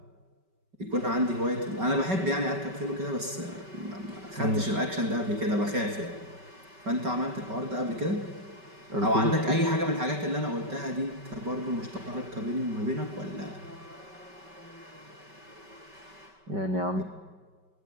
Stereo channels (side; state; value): left; late; 5.2 ms